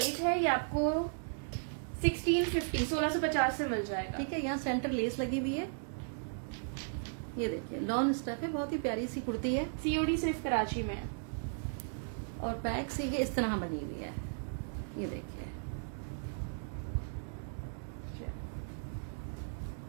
है, ये आपको 1650 से मिल जाएगा। ठीक है, यहाँ सेंटर लेस लगी हुई है। ये देखिए, लॉन स्टफ है, बहुत ही प्यारी सी कुर्ती है। सीओडी सिर्फ कराची में है। और बैक से ये इस तरह बनी हुई है। ये देखिए,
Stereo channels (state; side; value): silent; left; digital silence